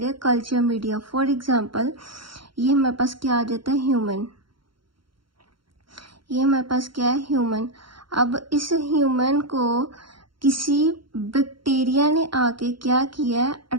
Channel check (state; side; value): late; left; 0.73 ms